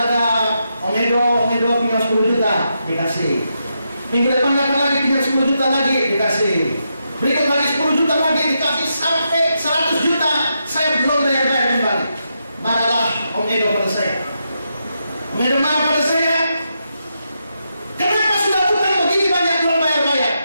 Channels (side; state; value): both; inverted; correlation -0.84